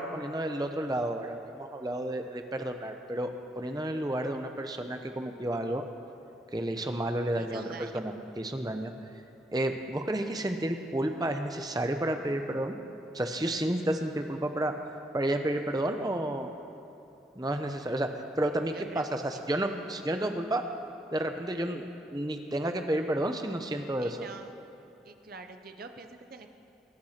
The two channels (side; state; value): both; normal; correlation 0.74